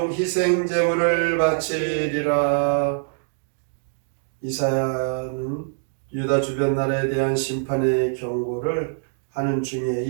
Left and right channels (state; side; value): silent; left; digital silence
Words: 희생 제물을 바치리라. 이사야는 유다 주변 나라에 대한 심판의 경고를 하는 중에